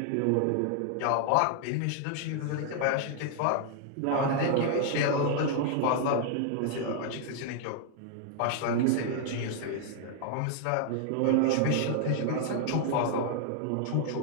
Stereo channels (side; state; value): both; different; correlation 0.00